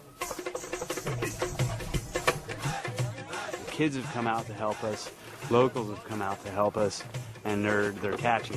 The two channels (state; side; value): identical; both; correlation 1.00